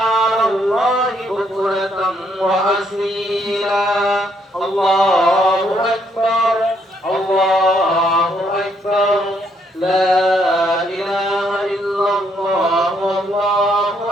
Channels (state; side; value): normal; both; correlation 0.72